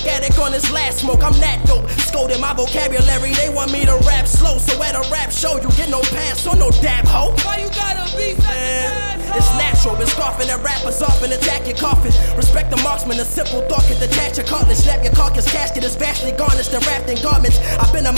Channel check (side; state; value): both; inverted; correlation -1.00